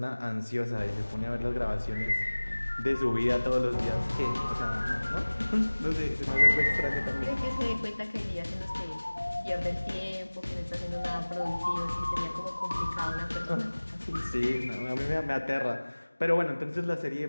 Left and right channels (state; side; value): inverted; both; correlation -1.00